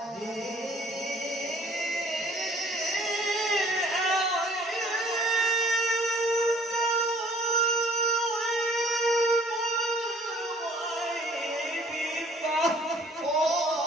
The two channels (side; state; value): both; normal; correlation 0.56